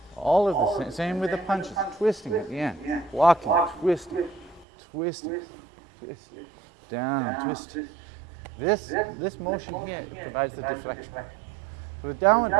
All of the same with the punches, twisting at the end, blocking, twisting, twisting, twisting, down, twisting. This motion here provides the deflection. So the downward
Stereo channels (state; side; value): drops out; left; at 4.7 s